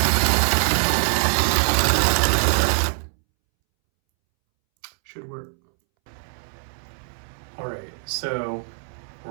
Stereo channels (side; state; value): left; silent; 63 dB below the other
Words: Should work. All right, so